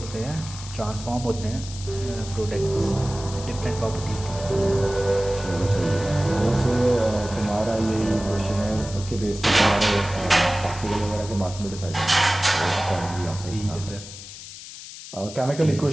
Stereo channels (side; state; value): left; noise; hiss, 13 dB below the sound